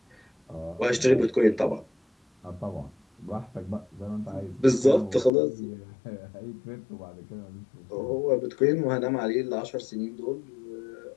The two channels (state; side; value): drops out; right; at 5.3 s